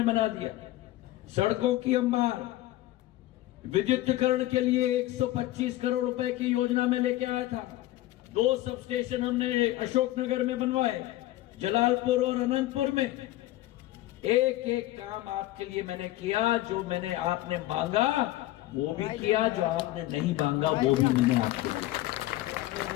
बना दिया, सड़कों की अंबार, विद्युतीकरण के लिए 125 करोड़ रुपए की योजना में लेके आया था। 2 सब स्टेशन हमने अशोकनगर में बनवाए, जलालपुर और अनंतपुर में। एक एक काम आपके लिए मैंने किया। जो मैंने आपने मांगा वो भी किया, जो आपने नहीं मांगा वो भी मैंने आपको दिया।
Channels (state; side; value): quieter; right; 16.3 dB